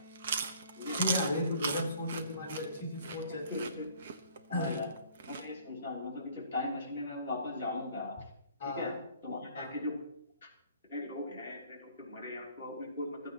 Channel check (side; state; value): both; inverted; correlation -0.56